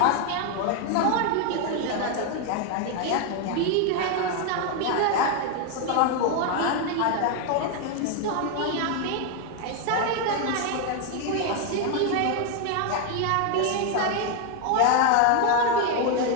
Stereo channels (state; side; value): different; both; correlation 0.01